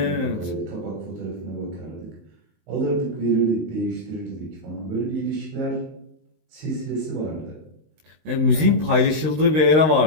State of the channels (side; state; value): left; late; 19 ms